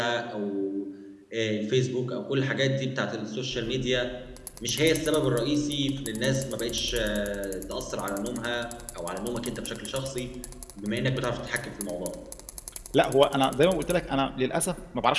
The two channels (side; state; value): both; identical; correlation 1.00